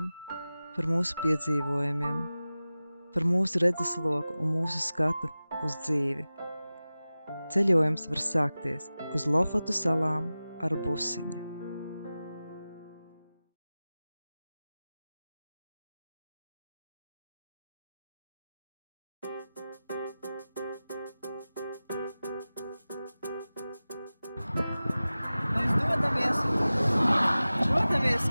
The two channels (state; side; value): inverted; both; correlation -0.96